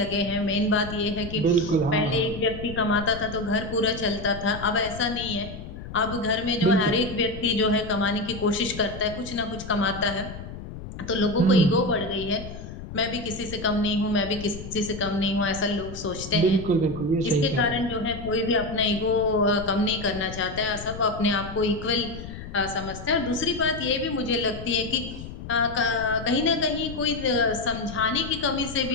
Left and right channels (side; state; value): left; noise; rumble, 11 dB below the sound